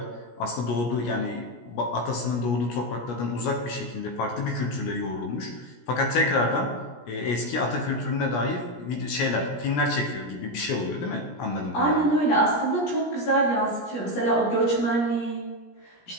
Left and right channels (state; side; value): late; right; 17 ms